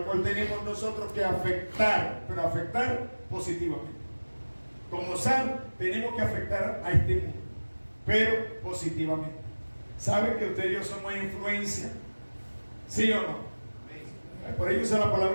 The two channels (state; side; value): inverted; both; correlation -1.00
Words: cual tenemos nosotros que afectar, pero afectar positivamente. Como sal, tenemos que afectar a este mundo, pero positivamente. ¿Sabe que usted y yo somos influencia? ¿Sí o no? Por ello usa la